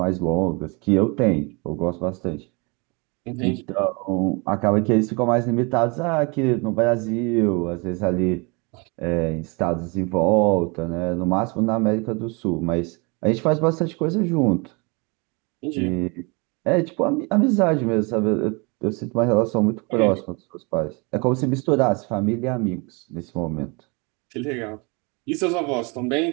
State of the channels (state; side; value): quieter; left; 29.9 dB